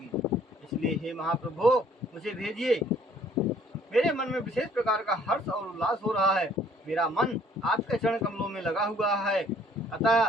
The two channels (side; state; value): both; normal; correlation 0.59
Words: इसलिए हे महाप्रभु, मुझे भेजिए। मेरे मन में विशेष प्रकार का हर्ष और उल्लास हो रहा है। मेरा मन आपके चरण कमलों में लगा हुआ है, अतः